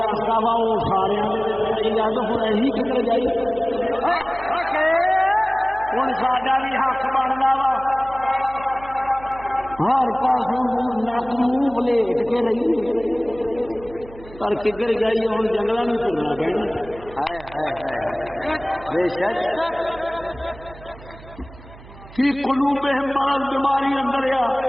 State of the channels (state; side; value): noise; right; hum, 19 dB below the sound